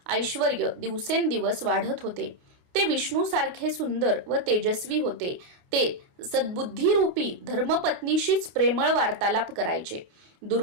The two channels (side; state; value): left; late; 28 ms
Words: ऐश्वर्य दिवसेंदिवस वाढत होते. ते विष्णूसारखे सुंदर व तेजस्वी होते. ते सद्बुद्धीरूपी धर्मपत्नीशीच प्रेमळ वार्तालाप करायचे.